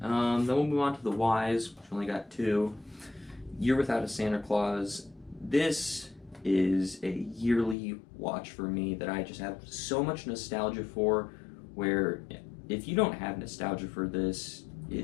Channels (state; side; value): drops out; right; at 7.8 s